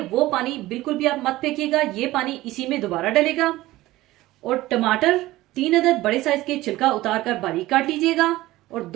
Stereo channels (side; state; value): left; quieter; 17.3 dB